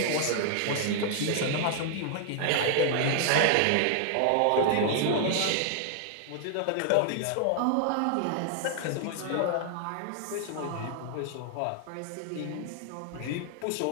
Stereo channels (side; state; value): both; different; correlation 0.00